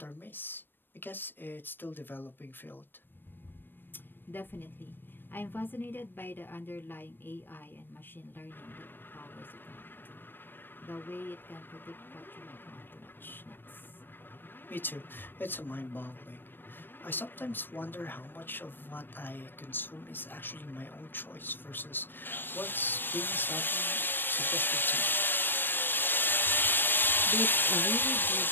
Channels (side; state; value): right; late; 0.095 ms